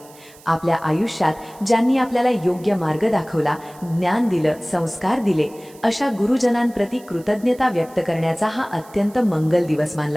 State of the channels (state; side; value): noise; right; hiss, 24 dB below the sound